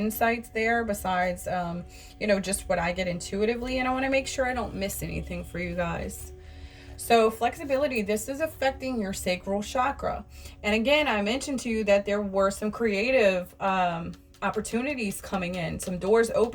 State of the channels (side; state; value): both; identical; correlation 1.00